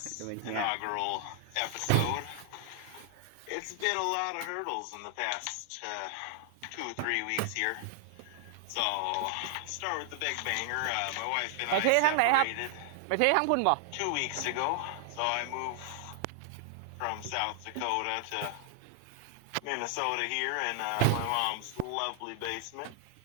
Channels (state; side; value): different; both; correlation 0.00